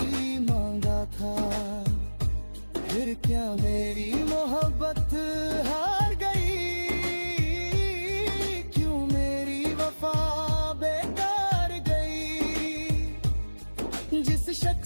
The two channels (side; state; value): both; inverted; correlation -1.00